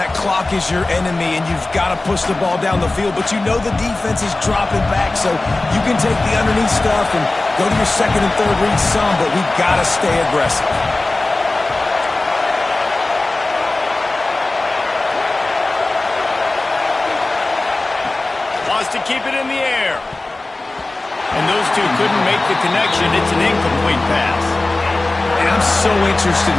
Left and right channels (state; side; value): quieter; right; 3.0 dB